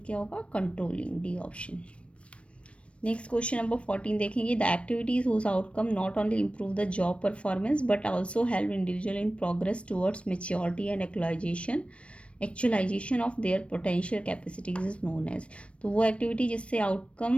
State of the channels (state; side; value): late; right; 0.061 ms